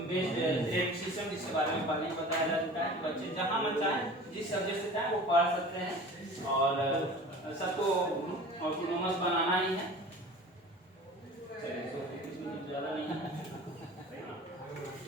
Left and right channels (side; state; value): both; normal; correlation 0.40